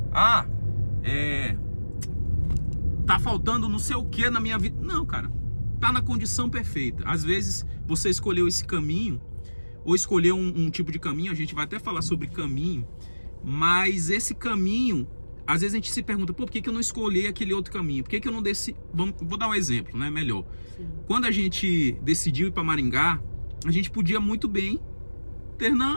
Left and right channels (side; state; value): both; inverted; correlation -1.00